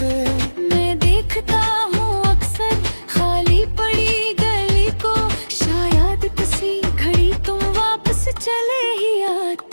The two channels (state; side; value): inverted; both; correlation -1.00